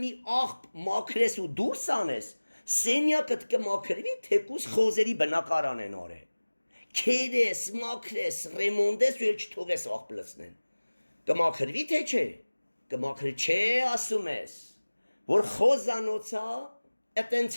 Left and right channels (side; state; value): both; inverted; correlation -1.00